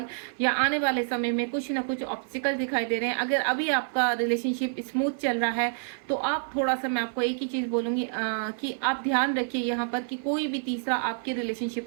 या आने वाले समय में कुछ ना कुछ ऑब्स्टिकल दिखाई दे रहे हैं। अगर अभी आपका रिलेशनशिप स्मूथ चल रहा है तो आप थोड़ा सा, मैं आपको एक ही चीज़ बोलूँगी कि आप ध्यान रखिए यहाँ पर कि कोई भी तीसरा आपके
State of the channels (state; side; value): silent; left; 55 dB below the other